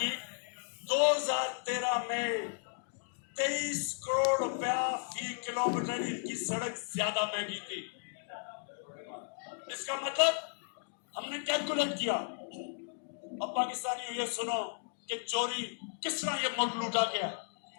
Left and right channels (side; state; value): right; silent; digital silence